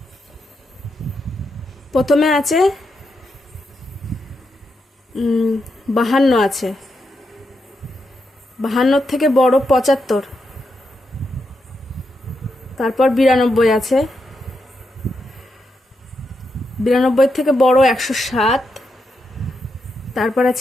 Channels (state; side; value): normal; both; correlation 0.84